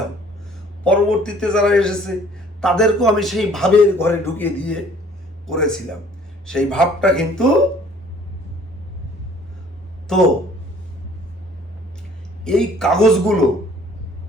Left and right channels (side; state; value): both; normal; correlation 0.55